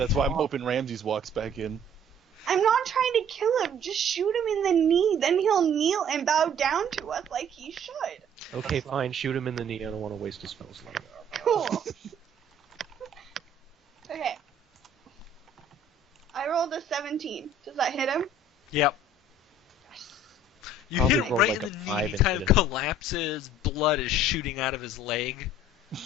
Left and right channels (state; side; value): normal; both; correlation 0.54